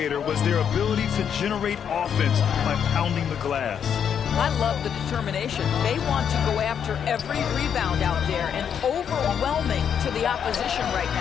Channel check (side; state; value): right; quieter; 8.1 dB